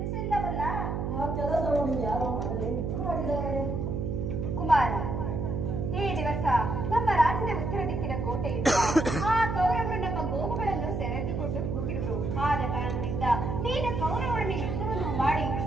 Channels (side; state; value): right; noise; hum, 2 dB below the sound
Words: ಆ ಕೆಲಸವನ್ನು ಯಾರೋ ಮಾಡಿದ್ದಾರೆ. ಕುಮಾರ, ಈ ದಿವಸ ನಮ್ಮ ರಾಜ್ಯದ ಉತ್ತರ ದಿಕ್ಕಿನ ಕೋಟೆಯಿಂದ ಆ ಕೌರವರು ನಮ್ಮ ಗೋವುಗಳನ್ನು ಸೆರೆದುಕೊಂಡು ಹೋಗಿರುವರು. ಆದ ಕಾರಣದಿಂದ ನೀನು ಕೌರವರನ್ನು ಯುದ್ಧವನ್ನು ಮಾಡಿ